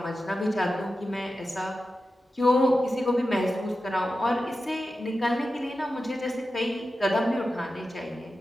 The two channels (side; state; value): both; normal; correlation 0.92